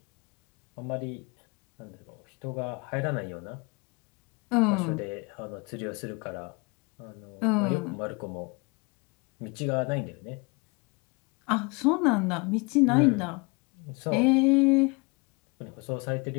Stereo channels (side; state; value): right; quieter; 29.3 dB